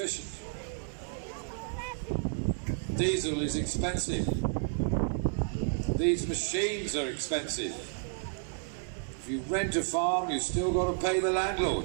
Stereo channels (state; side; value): silent; left; 57 dB below the other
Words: Diesel is expensive. These machines are expensive. If you rent a farm, you've still got to pay the